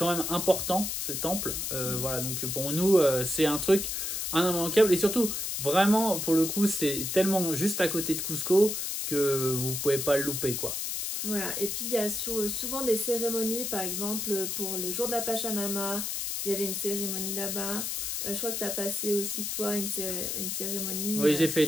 même important, ce temple. Voilà, donc pour nous, c'est un truc immanquable. Et surtout, vraiment, pour le coup, c'est tellement juste à côté de Cusco que vous pouvez pas le louper, quoi. Voilà, et puis il y a souvent des cérémonies, par exemple pour le jour de la Pachamama, il y avait une cérémonie là-bas. Je crois que tu as passé aussi toi une cérémonie. Oui, j'ai fait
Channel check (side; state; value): left; noise; hiss, 2 dB below the sound